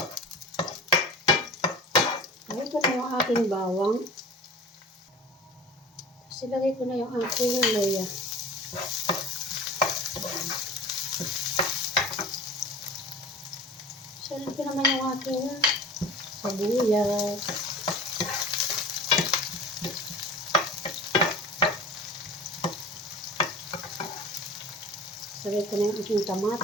Lagay ko na yung aking bawang. Tapos ilagay ko na yung aking luya. Salit ko naman yung aking sibuyas. Salit ko na yung aking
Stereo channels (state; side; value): normal; both; correlation 0.38